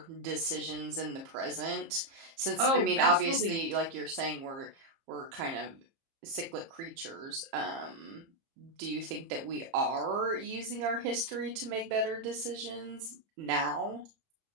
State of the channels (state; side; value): late; left; 30 ms